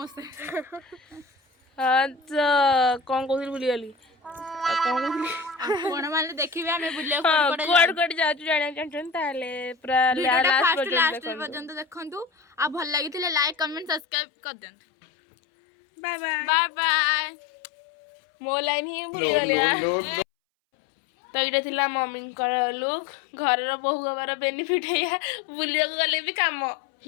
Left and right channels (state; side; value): drops out; right; at 14.0 s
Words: हां तो कोन कोथिल भूली गली कोन कोन माने देखिबे हमें बुलिया कोड जाचु जाने चंचन ताले पूरा लास्ट पर्यंत देखंतु आ भल लागिथिले लाइक कमेंट सब्सक्राइब कर देंतु। बाय बाय बाय बाय मो लाइन ही भूली गली। तो ये थिला मम्मी लुक घर बहु हबार बेनिफिट है बुलिया गले भी काम